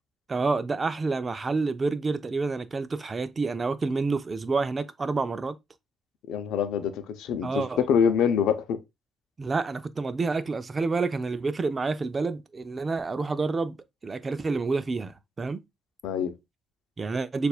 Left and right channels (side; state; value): both; normal; correlation 0.76